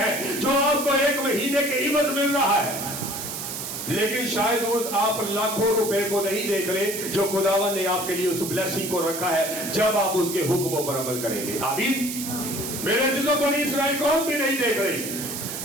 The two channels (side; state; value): right; noise; hiss, 6 dB below the sound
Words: جو آپ کو 1 مہینے کے عوض مل رہا ہے، لیکن شاید آپ لاکھوں روپے کو نہیں دیکھ رہے جو خداوند نے آپ کے لیے اس بلیسنگ کو رکھا ہے جب آپ اس کے حکموں پر عمل کریں گے۔ آمین۔ میرے عزیزوں، بنی اسرائیل قوم بھی نہیں دیکھ رہی۔